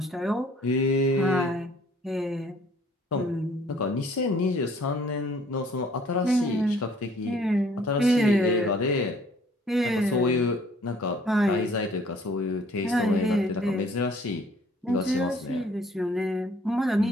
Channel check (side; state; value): both; normal; correlation 0.57